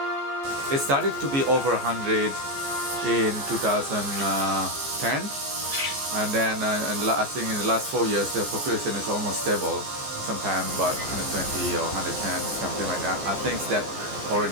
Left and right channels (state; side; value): late; left; 14 ms